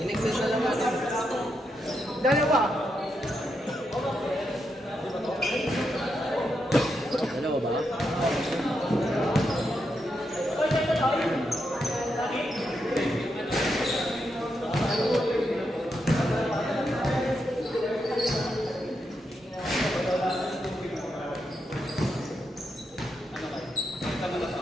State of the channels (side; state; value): both; normal; correlation 0.83